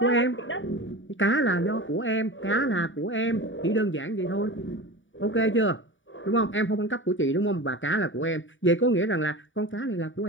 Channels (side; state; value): right; late; 0.56 ms